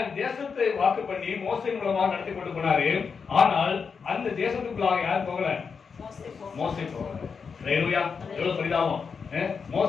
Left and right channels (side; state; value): right; quieter; 5.7 dB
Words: தேசத்தை வாக்கு பண்ணி மோசே மூலமாக நடத்தி கொண்டு போனாரு. ஆனால் அந்த தேசத்துக்குள்ளாக யார் போகல? மோசே போகல. அல்லேலூயா. எவ்வளவு பரிதாபம்.